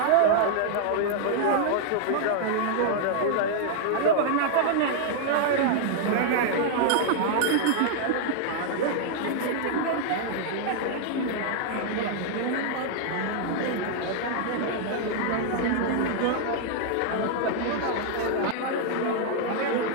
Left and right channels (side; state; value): both; different; correlation -0.01